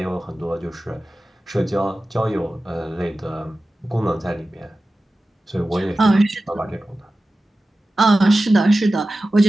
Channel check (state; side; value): normal; both; correlation 0.95